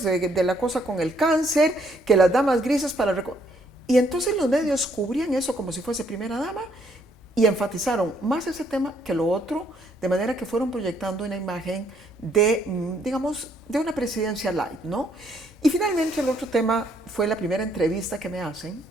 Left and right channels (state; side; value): normal; both; correlation 0.69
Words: de la cosa con el cáncer, que las damas grises para recaudar. Y entonces los medios cubrían eso como si fuese primera dama y enfatizaron más ese tema que lo otro, de manera que fueron proyectando una imagen de, digamos, de una presidencia light, ¿no? Y finalmente el otro tema fue la primera entrevista que me hacen